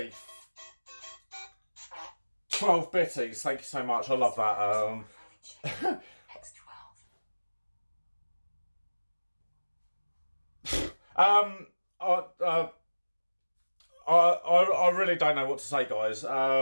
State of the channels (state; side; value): inverted; both; correlation -1.00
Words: 12 bitties, thank you so much. I love that. I really don't know what to say, guys.